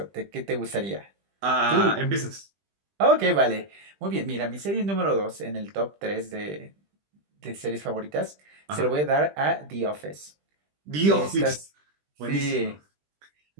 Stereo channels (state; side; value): late; left; 20 ms